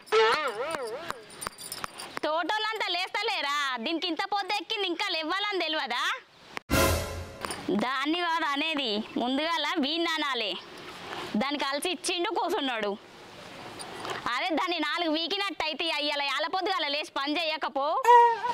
తోటోళ్ళంతా లేస్తలేరా దీనికి ఇంత పొద్దు ఎక్కింది ఇంకా లేవాలని తెలియదా దాన్ని కాదు అనేది ముందుగాల వీణ్ అనాలి దానికి కలిసి ఇచ్చిండు కూర్చున్నాడు అదే దాన్ని 4 వీకినట్టు అయితే అయ్యాల యాలపొద్దుగాల లేచి పని చేయకపో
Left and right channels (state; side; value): identical; both; correlation 1.00